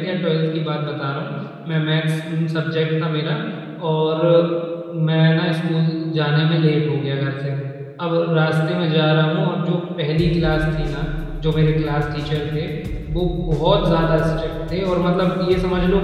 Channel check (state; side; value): identical; both; correlation 1.00